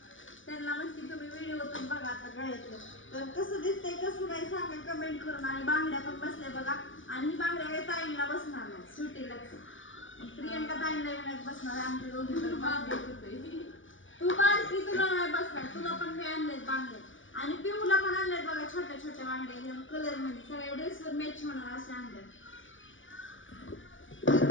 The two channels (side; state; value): right; late; 0.56 ms